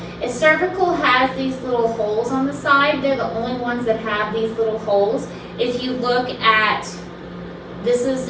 is cervical has these little holes on the side. They're the only ones that have these little holes. If you look at, this is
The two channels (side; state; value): both; identical; correlation 1.00